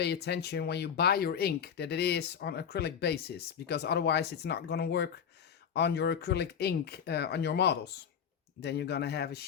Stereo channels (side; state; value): right; quieter; 7.8 dB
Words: attention when you buy your ink that it is on acrylic basis, because otherwise it's not going to work on your acrylic ink on your models. Then you're going to have a